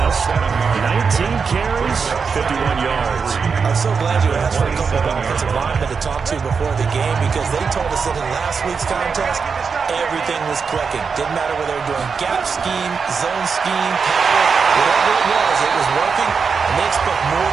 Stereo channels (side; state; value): left; quieter; 5.6 dB